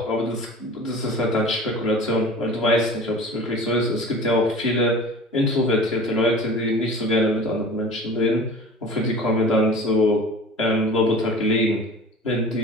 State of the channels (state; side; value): normal; both; correlation 0.40